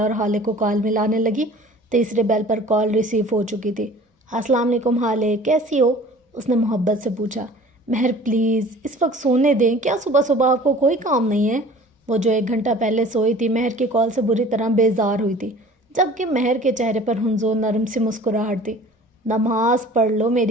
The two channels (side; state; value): both; normal; correlation 0.46